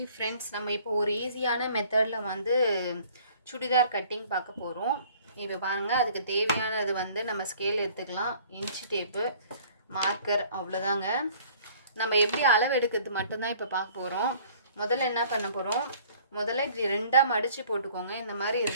ஃப்ரெண்ட்ஸ், நம்ம இப்போ ஒரு ஈஸியான மெத்தடில் வந்து சுடிதார் கட்டிங் பார்க்க போகிறோம். இப்போ பாருங்கள், அதுக்கு தேவையானது வந்து நம்ம ஸ்கேல் எடுத்துக்கலாம், இன்ச்சு டேப்பு, மார்க்கர், அவ்வளோதாங்க. நம்ம எப்படி அளவு எடுக்கிறது மட்டும்தான் இப்போ பார்க்க போகிறோம். முதல்ல என்ன பண்ண போகிறோம், முதல்ல இப்படி ரெண்டாக மடித்து போட்டுக்கோங்க. இந்த மாதிரி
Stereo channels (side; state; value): both; inverted; correlation -0.54